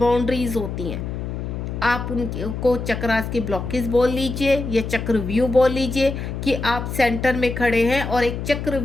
होती हैं, आप उनको चक्रास की ब्लॉकेज बोल लीजिए या चक्रव्यूह बोल लीजिए कि आप सेंटर में खड़े हैं और एक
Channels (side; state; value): left; noise; hum, 5 dB below the sound